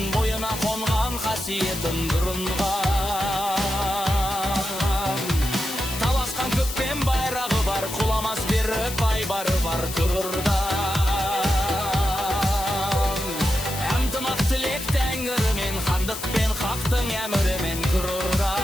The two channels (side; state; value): left; noise; hiss, 8 dB below the sound